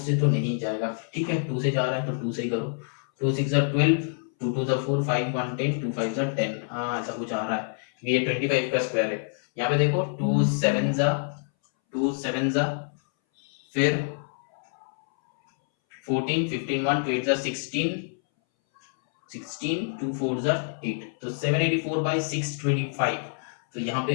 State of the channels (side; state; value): right; silent; 60 dB below the other